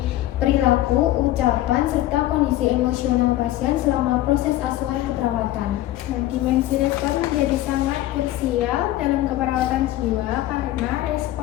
perilaku, ucapan, serta kondisi emosional pasien selama proses asuhan keperawatan. Nah, dimensi respon menjadi sangat krusial dalam keperawatan jiwa karena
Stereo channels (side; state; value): right; quieter; 15.0 dB